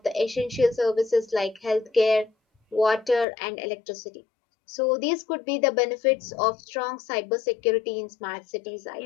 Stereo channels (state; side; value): drops out; right; at 3.2 s